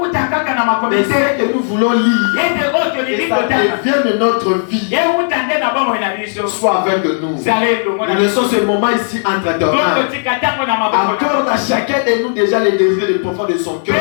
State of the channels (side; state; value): right; silent; 67 dB below the other